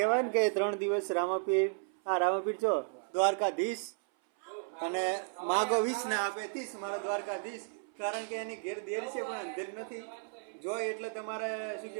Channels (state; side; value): silent; left; 55 dB below the other